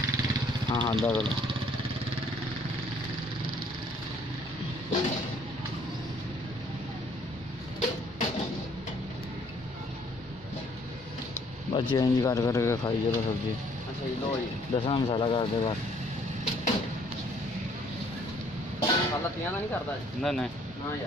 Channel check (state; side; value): normal; both; correlation 0.62